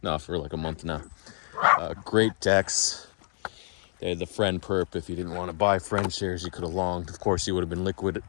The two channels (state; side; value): silent; right; 59 dB below the other